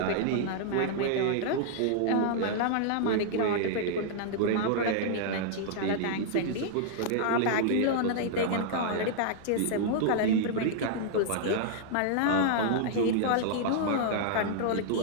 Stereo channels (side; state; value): both; different; correlation -0.01